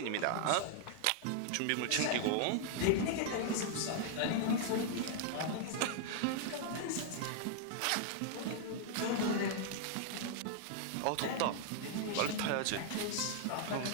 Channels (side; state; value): both; different; correlation 0.00